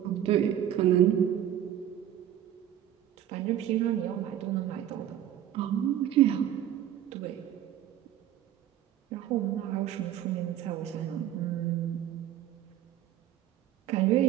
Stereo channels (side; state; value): left; quieter; 11.2 dB